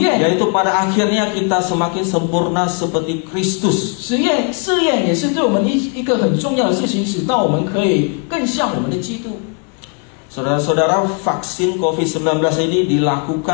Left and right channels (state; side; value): quieter; right; 37.2 dB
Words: Yaitu pada akhirnya kita semakin sempurna seperti Kristus. 试验也是对我们一个很重要的事情，使到我们可以更像我们的基督。 Saudara-saudara, vaksin COVID-19 ini